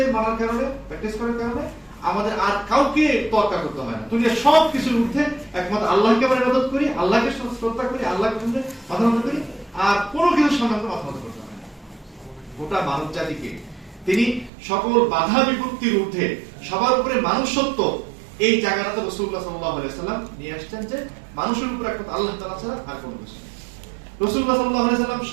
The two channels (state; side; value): drops out; left; at 14.5 s